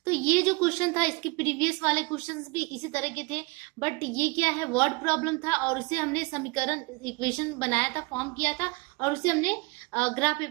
तो ये जो क्वेश्चन था, इसके प्रीवियस वाले क्वेश्चंस भी इसी तरह के थे, बट ये क्या है, वर्ड प्रॉब्लम था, और उसे हमने समीकरण इक्वेशन बनाया था, फॉर्म किया था, और उसे हमने ग्राफ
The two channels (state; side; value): quieter; left; 27.1 dB